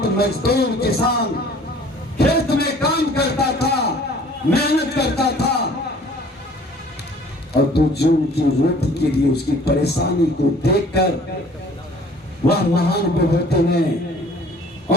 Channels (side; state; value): both; normal; correlation 0.52